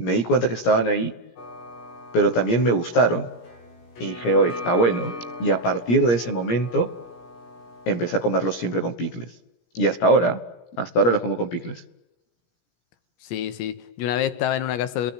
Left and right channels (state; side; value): late; right; 17 ms